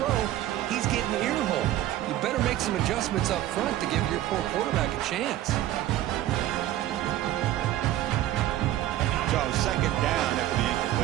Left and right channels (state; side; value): quieter; left; 13.6 dB